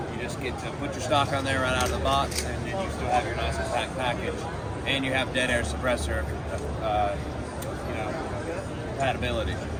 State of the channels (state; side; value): identical; both; correlation 1.00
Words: You just get to put your stock on there right out of the box, and then you still have your nice compact package, and you have dead air suppressor, compatibility.